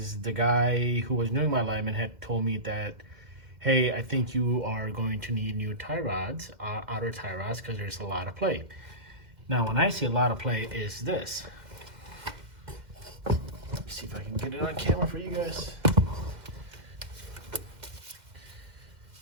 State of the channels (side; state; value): left; late; 1.9 ms